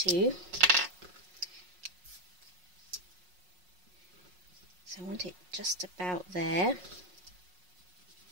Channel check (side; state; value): left; late; 5.5 ms